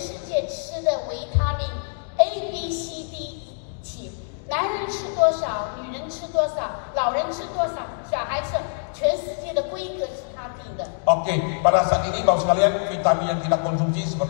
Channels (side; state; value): right; silent; digital silence